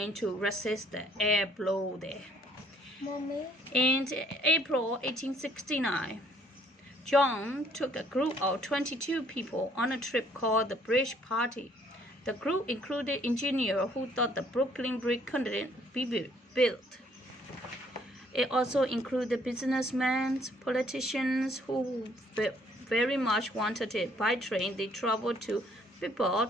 to resist the air blow there. Mommy. In April 1869, John took a group of 22 people on a trip called the Bridge Party. The group included engineers who thought the Brooklyn Bridge couldn't be built. It also included businessmen, politicians who very much wanted it. By train, they traveled to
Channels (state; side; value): normal; both; correlation 0.63